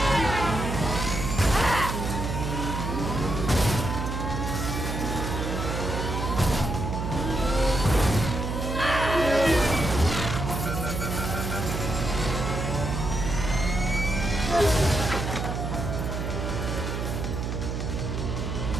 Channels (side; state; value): right; noise; hum, 3 dB below the sound